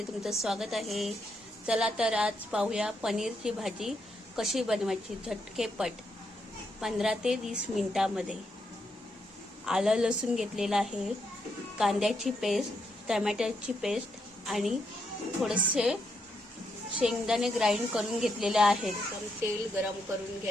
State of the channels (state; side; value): normal; both; correlation 0.79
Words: तुमचं स्वागत आहे। चला तर आज पाहूया पनीरची भाजी कशी बनवायची झटकेपट 15 ते 20 मिनिटांमध्ये। आलं लसूण घेतलेलं आहे, कांद्याची पेस्ट, टोमॅटोची पेस्ट आणि थोडेसे शेंगदाणे ग्राइंड करून घेतलेले आहेत। तर तेल गरम करून